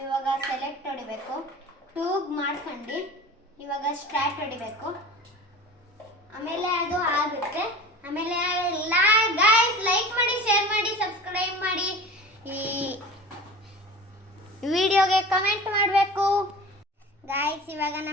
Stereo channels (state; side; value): normal; both; correlation 0.37